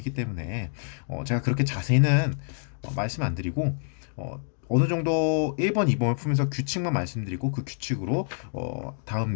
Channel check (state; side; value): silent; right; digital silence